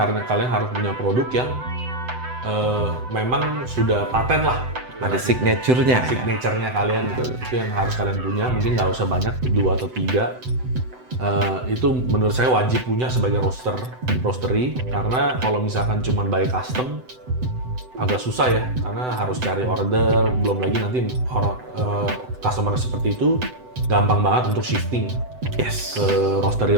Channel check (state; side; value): late; left; 7.9 ms